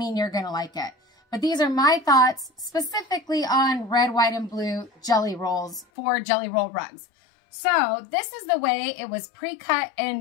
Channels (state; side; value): drops out; right; at 5.9 s